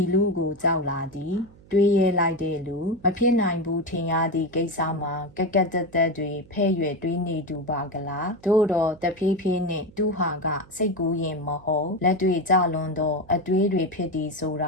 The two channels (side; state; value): right; noise; hum, 24 dB below the sound